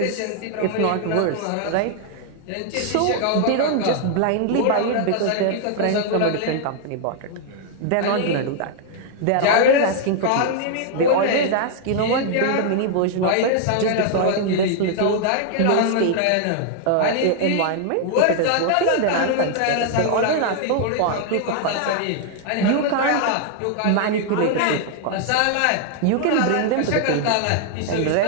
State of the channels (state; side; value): different; both; correlation 0.00